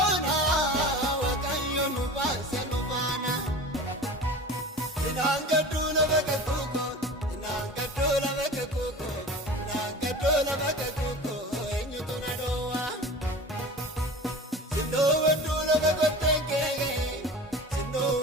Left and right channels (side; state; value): both; normal; correlation 0.36